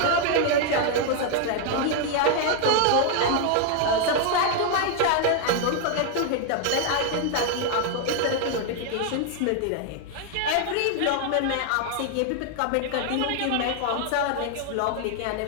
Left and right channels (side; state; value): both; different; correlation 0.00